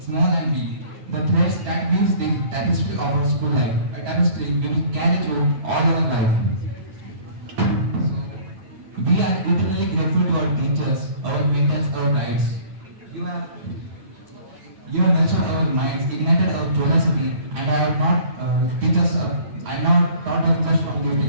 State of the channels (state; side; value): late; left; 9.2 ms